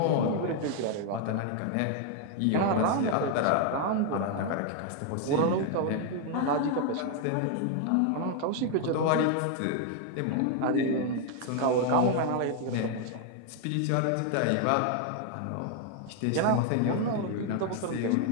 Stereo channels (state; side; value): different; both; correlation 0.01